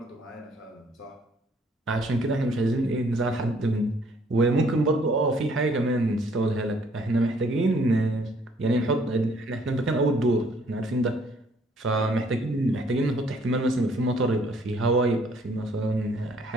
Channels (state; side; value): normal; both; correlation 0.63